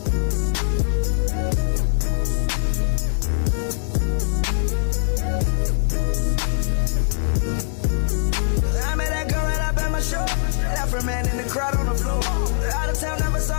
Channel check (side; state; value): right; silent; 58 dB below the other